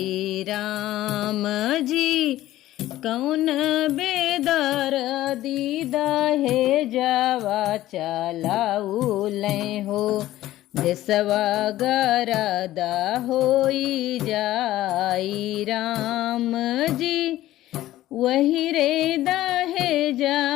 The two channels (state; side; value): quieter; right; 14.9 dB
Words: राम जी। कौन बेदर दीदा हे जावा चलाउले हो देशवा गरद होई जाई राम जी। वही रे दहे